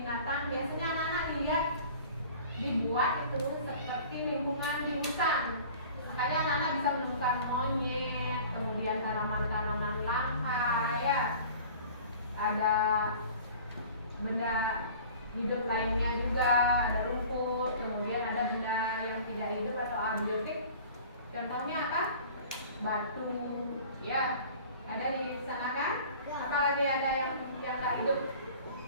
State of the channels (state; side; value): inverted; both; correlation -0.45